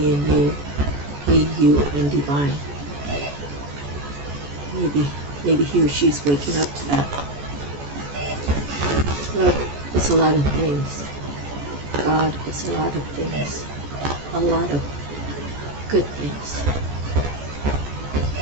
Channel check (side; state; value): left; late; 14 ms